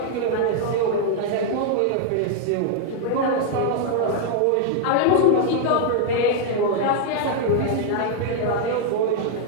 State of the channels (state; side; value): different; both; correlation -0.01